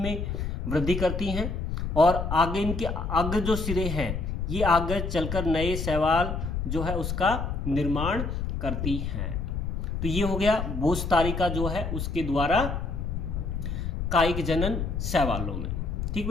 वृद्धि करती हैं और आगे इनके अग्र जो सिरे हैं ये आगे चलकर नए शैवाल जो है उसका निर्माण करती हैं। तो ये हो गया बोस्तारिका जो है उसके द्वारा कायिक जनन शैवालों में। ठीक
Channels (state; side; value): noise; left; rumble, 3 dB below the sound